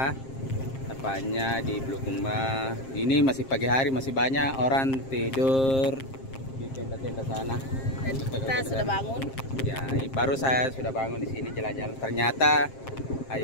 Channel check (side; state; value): right; late; 7.5 ms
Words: tepatnya di Bulukumba. Ini masih pagi hari, masih banyak orang tidur di tenda-tenda sana. Dan kita sudah bangun. Ya, baru saya sudah bangun di sini jalan-jalan. Ternyata